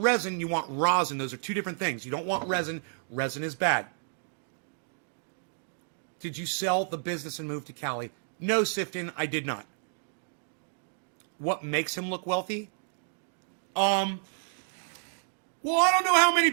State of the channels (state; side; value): silent; left; digital silence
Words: you want rosin. Those are two different things. You don't want resin. Resin is bad. Did you sell the business and move to Cali? No, Sifton, I did not. What makes him look wealthy? Well, I don't know how many